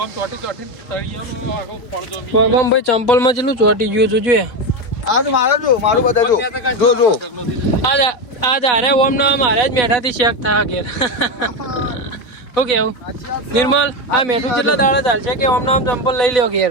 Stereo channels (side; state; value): right; late; 4.1 ms